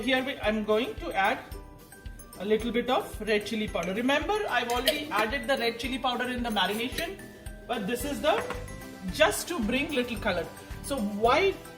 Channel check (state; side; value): identical; both; correlation 1.00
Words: I'm going to add a little bit of red chili powder. Remember, I've already added the red chili powder in the marination, but this is just to bring little color. So why